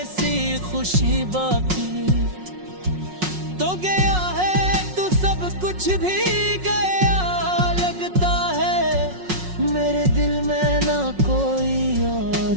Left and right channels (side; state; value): left; late; 5.5 ms